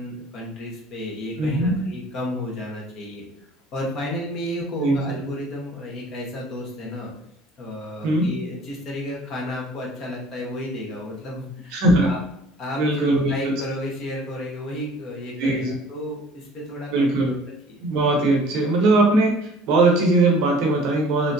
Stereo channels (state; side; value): normal; both; correlation 0.50